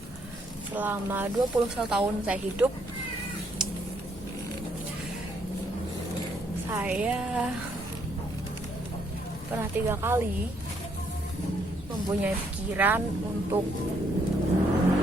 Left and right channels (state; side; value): normal; both; correlation 0.71